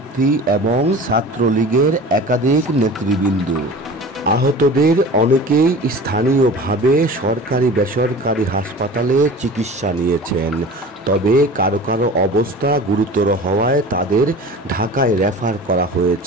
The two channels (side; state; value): both; normal; correlation 0.38